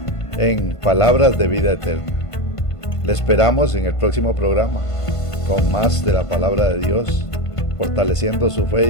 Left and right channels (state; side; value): late; right; 1.5 ms